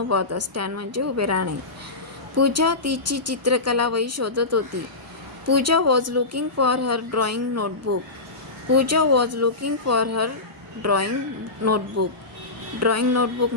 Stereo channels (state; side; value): quieter; right; 3.3 dB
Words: होता. स्टँड म्हणजे उभे राहणे. पूजा तिची चित्रकला वही शोधत होती. पूजा was looking for her drawing notebook. Pooja was looking for her drawing notebook. Drawing notebook